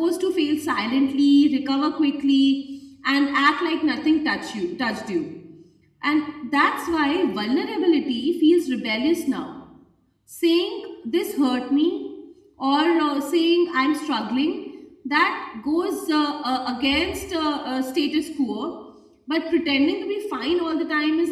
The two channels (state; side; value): identical; both; correlation 1.00